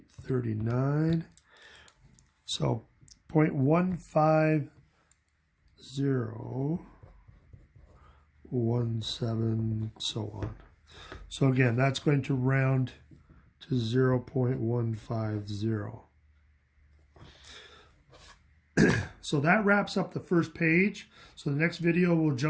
so 0.15017, so on. So again, that's going to round to 0.150. So that wraps up the first page. So the next video we'll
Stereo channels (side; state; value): both; identical; correlation 1.00